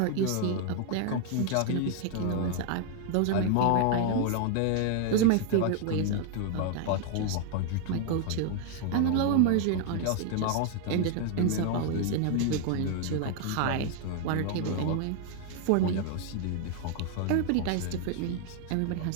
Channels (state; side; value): different; both; correlation 0.00